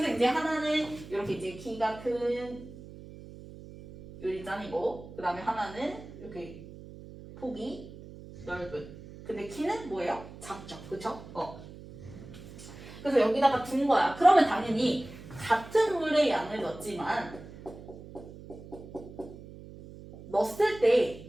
이제 하나는 이렇게 이제 키가 큰 유리잔이고 그 다음에 하나는 이렇게 폭이 넓은 근데 키는 뭐예요? 작죠. 그쵸? 그래서 여기다가 둔 거야. 그러면 당연히 같은 물의 양을 넣었지만 넣었을 때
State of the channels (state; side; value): noise; right; hum, 16 dB below the sound